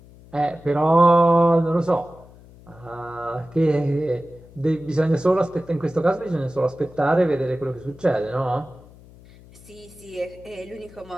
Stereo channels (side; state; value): left; noise; hum, 23 dB below the sound